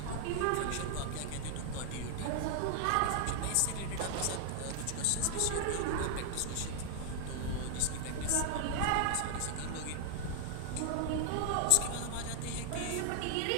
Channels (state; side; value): different; both; correlation 0.00